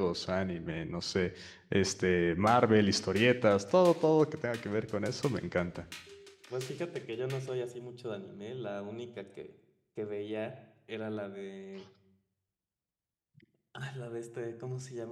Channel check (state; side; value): identical; both; correlation 1.00